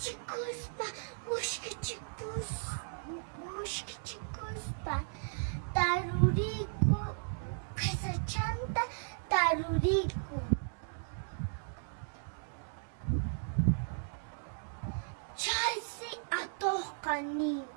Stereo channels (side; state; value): left; silent; digital silence